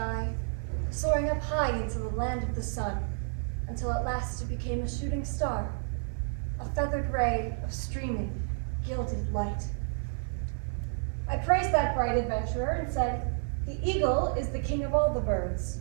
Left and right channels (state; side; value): silent; left; 57 dB below the other